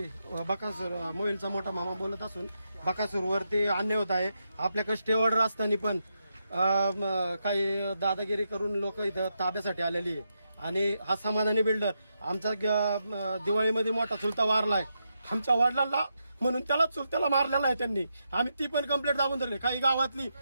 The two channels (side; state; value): both; inverted; correlation -0.84